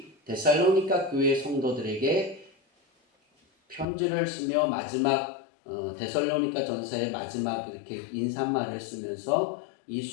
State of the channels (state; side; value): drops out; right; at 3.9 s